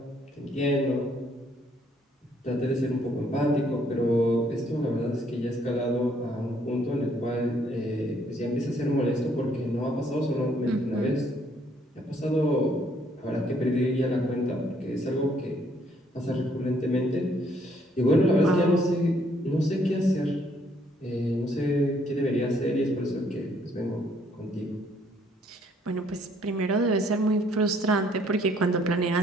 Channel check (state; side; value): normal; both; correlation 0.66